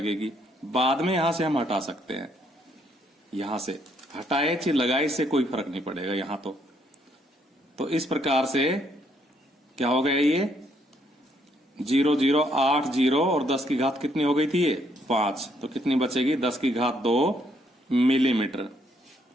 बाद में यहां से हम हटा सकते हैं। यहां से हटाए चाहे लगाए, इससे कोई फर्क नहीं पड़ेगा यहां तो इस प्रकार से क्या हो गया? ये 0080 और 10⁻ कितनी हो गई थी? ये 5, तो कितनी बचेगी? 10⁻2 मिलीमीटर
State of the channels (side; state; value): both; normal; correlation 0.71